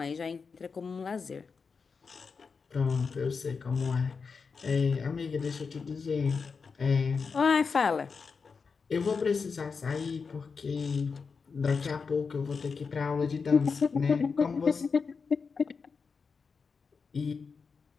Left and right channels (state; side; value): quieter; right; 5.2 dB